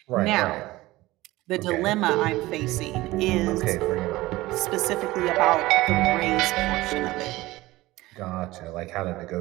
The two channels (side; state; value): left; quieter; 18.7 dB